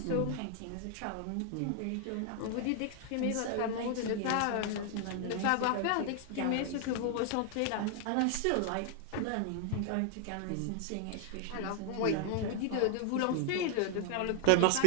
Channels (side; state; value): both; different; correlation 0.00